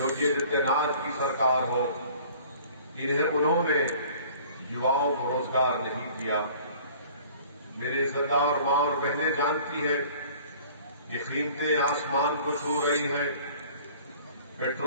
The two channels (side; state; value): both; inverted; correlation -0.49